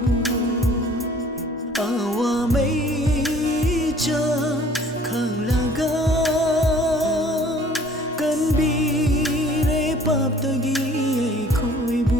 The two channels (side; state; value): both; normal; correlation 0.54